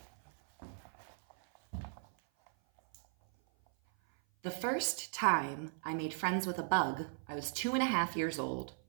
The first time I made friends with a bug, I was 2.5 years old.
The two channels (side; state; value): left; silent; 53 dB below the other